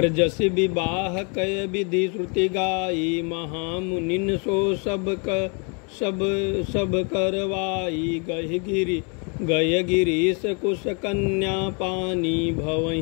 जसि विवाह कय विधि श्रुति गाई, महामुनिन सो सब करवाई। गय गिरीश कुश कन्या पानी,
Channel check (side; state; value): right; quieter; 35.7 dB